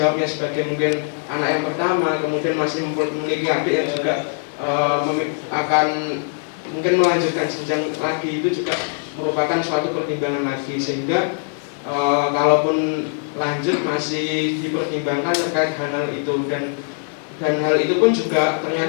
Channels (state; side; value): silent; right; 60 dB below the other